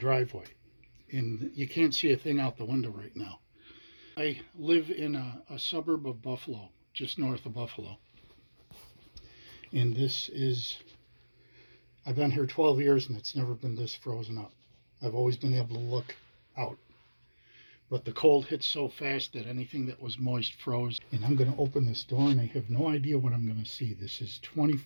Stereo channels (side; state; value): both; inverted; correlation -1.00